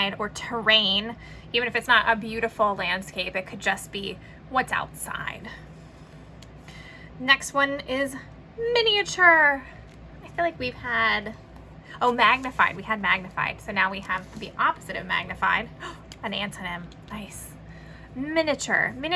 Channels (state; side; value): identical; both; correlation 1.00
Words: or terrain. Even if it's not a beautiful landscape, it could just be what's outside. Next one is miniature. I feel like we've had, oh, magnified. We had magnified. So now we have the opposite of magnified. An antonym. Nice. Miniature.